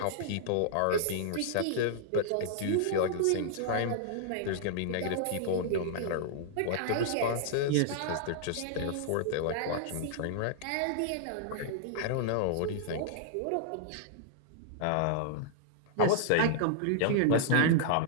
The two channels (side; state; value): both; different; correlation -0.01